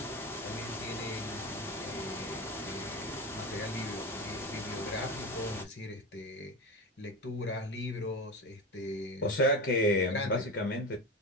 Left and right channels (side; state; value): both; normal; correlation 0.23